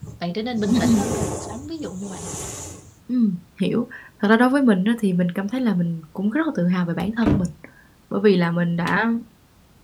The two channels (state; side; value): identical; both; correlation 1.00